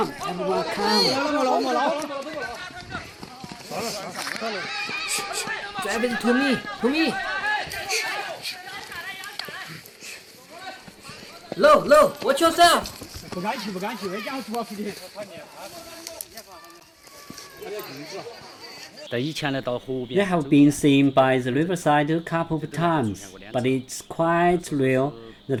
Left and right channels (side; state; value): both; identical; correlation 1.00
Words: everyone, come! Drive it to me! Low, watch yourself! They have been seen by the riverside a couple of times, but it's quite rare